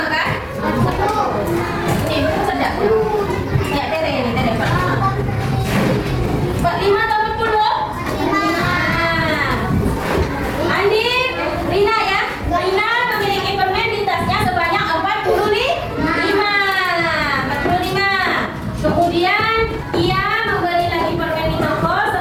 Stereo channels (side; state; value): both; identical; correlation 1.00